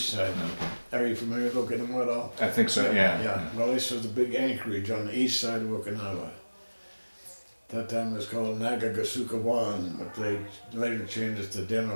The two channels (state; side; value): inverted; both; correlation -1.00